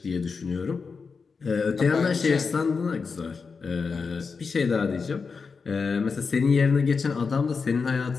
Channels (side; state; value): right; quieter; 5.0 dB